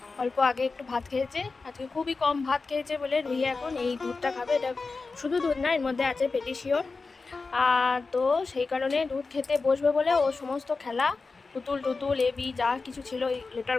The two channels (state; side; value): quieter; right; 4.1 dB